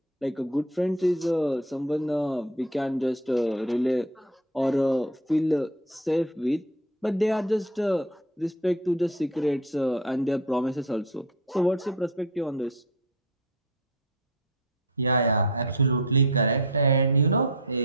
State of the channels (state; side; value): normal; both; correlation 0.32